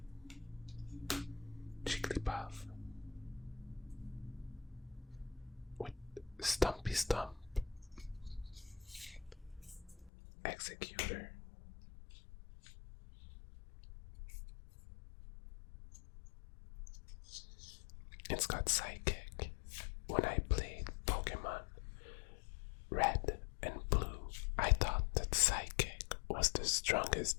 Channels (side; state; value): right; drops out; at 10.1 s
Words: Jigglypuff with Stumpy Stump. Executor. It's got Psychic. When I played Pokemon Red and Blue, I thought that Psychic was the